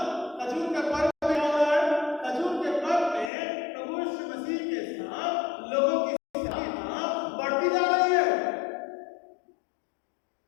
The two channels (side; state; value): right; drops out; at 3.3 s